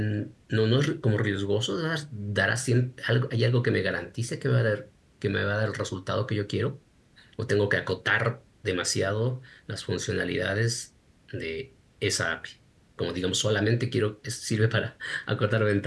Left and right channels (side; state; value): both; identical; correlation 1.00